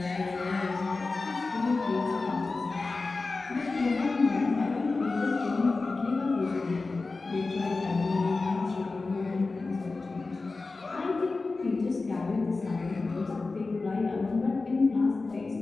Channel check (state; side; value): quieter; right; 3.7 dB